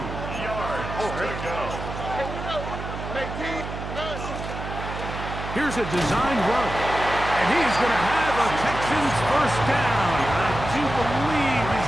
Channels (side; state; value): right; noise; hum, 7 dB below the sound